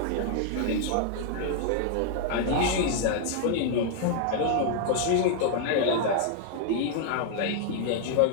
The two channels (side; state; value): both; different; correlation 0.00